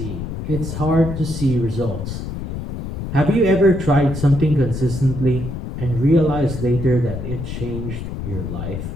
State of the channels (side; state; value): left; noise; rumble, 6 dB below the sound